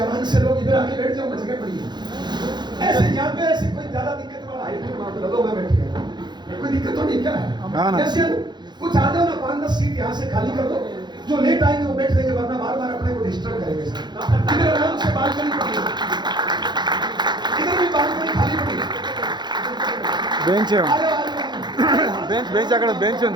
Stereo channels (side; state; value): left; late; 0.21 ms